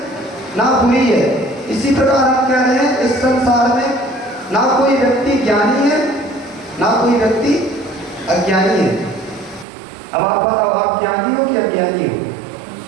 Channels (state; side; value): drops out; left; at 9.7 s